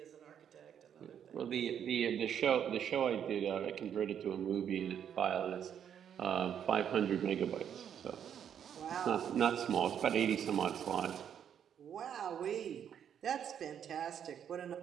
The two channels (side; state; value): left; quieter; 8.8 dB